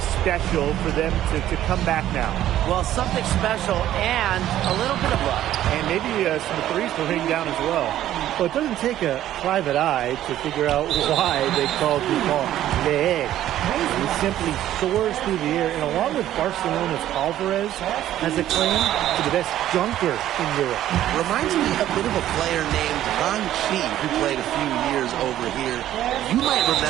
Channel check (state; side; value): quieter; left; 12.6 dB